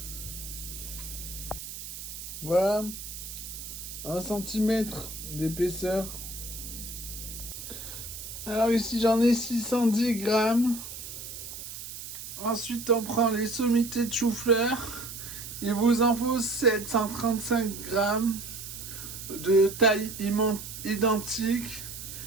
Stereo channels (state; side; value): noise; right; hiss, 10 dB below the sound